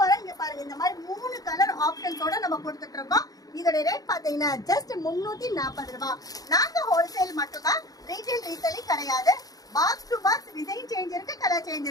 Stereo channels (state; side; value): late; right; 0.18 ms